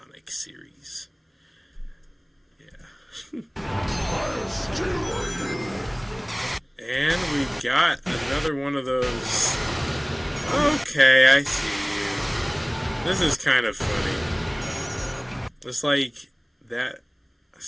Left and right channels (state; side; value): identical; both; correlation 1.00